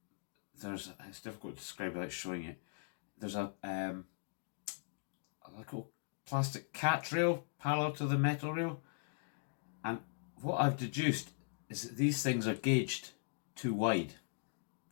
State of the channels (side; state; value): right; silent; digital silence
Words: it's difficult to describe without showing it. There's a little plastic catch rail parallel to the metal rail, and what I've deduced is that these things are gauged too wide.